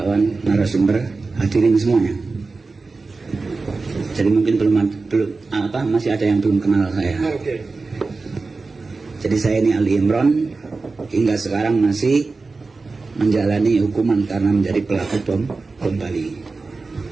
narasumber, hadirin semuanya. Jadi mungkin masih ada yang belum kenal saya. Jadi saya ini Ali Imron, hingga sekarang masih menjalani hukuman karena menjadi pelaku bom Bali.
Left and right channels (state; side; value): quieter; left; 3.9 dB